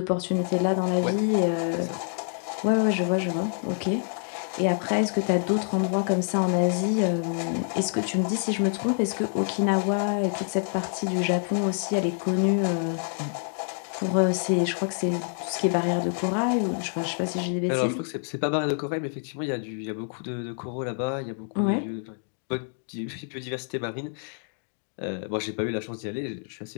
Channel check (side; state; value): right; silent; digital silence